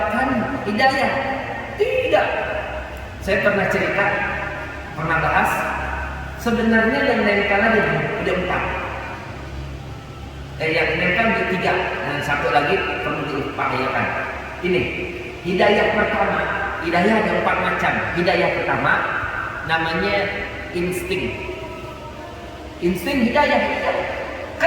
hidayah. Tidak. Saya pernah cerita, pernah bahas. Sebenarnya yang nempel ada 4. Yang nempel ada 3. Dan satu lagi perlu diupayakan. Ini hidayah pertama. Hidayah ada 4 macam. Hidayah pertama namanya insting. Insting hidayah.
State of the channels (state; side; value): identical; both; correlation 1.00